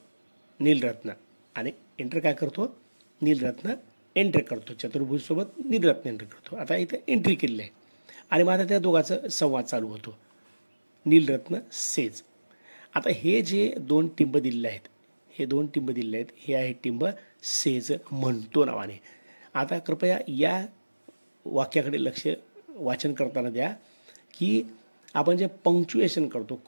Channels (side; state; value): both; inverted; correlation -1.00